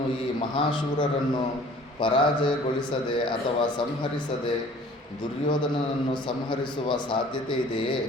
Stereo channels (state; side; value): normal; both; correlation 0.50